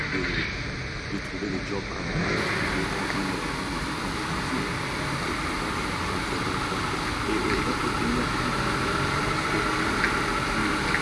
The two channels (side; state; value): both; identical; correlation 1.00